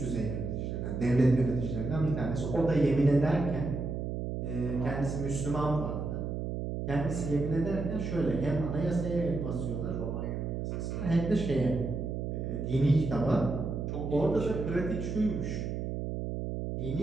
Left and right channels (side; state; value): right; noise; hum, 3 dB below the sound